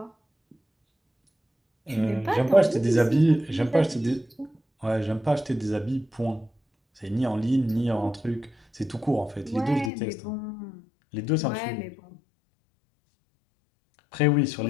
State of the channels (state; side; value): drops out; right; at 9.9 s